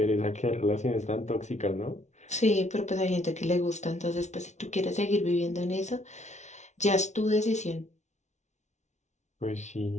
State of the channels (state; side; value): late; right; 0.33 ms